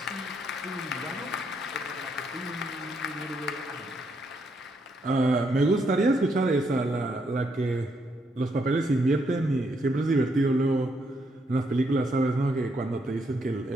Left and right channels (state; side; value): normal; both; correlation 0.76